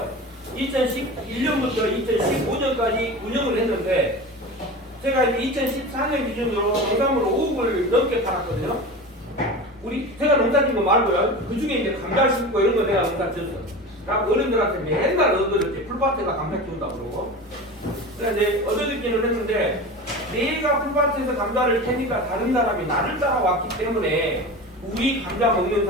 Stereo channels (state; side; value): normal; both; correlation 0.31